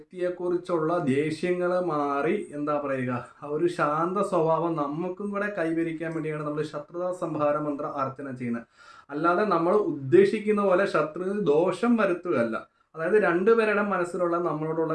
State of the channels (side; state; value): both; identical; correlation 1.00